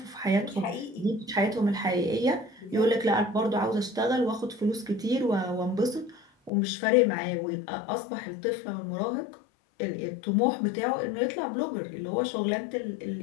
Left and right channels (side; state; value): right; drops out; at 6.5 s